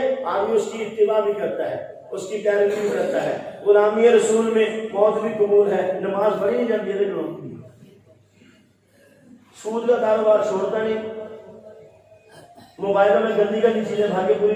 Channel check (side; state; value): both; identical; correlation 1.00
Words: آدمی اس کی اتباع بھی کرتا ہے، اس کی پیروی بھی کرتا ہے۔ غلامی رسول میں موت بھی قبول ہے، نماز پڑھی نہیں جاتی ہے، سود کا کاروبار چھوڑتا نہیں، موبائلوں میں گندی گندی چیزیں بھاگے پوری